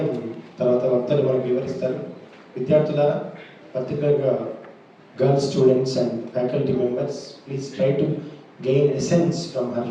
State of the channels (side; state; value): both; identical; correlation 1.00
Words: తర్వాత వక్తలు మనకు వివరిస్తారు. విద్యార్థులారా, పర్టికులర్గా girl students and faculty members, please try to gain essence from her